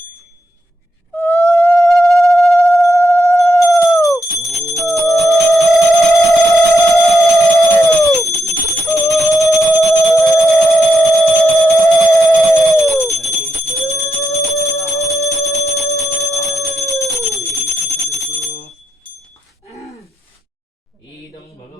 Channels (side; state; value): both; normal; correlation 0.83